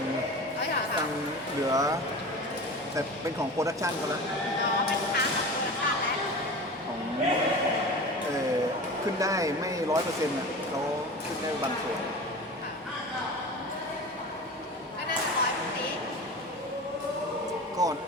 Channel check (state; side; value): normal; both; correlation 0.33